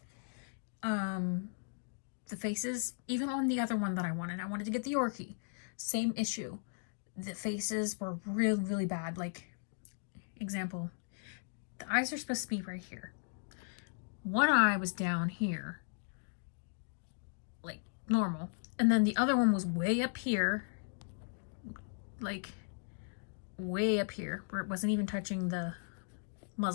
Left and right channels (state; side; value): silent; right; digital silence